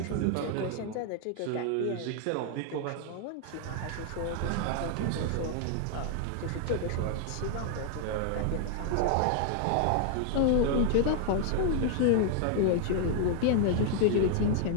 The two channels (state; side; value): different; both; correlation 0.00